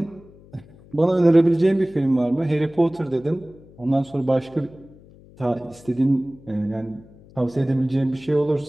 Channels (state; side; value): noise; left; hum, 24 dB below the sound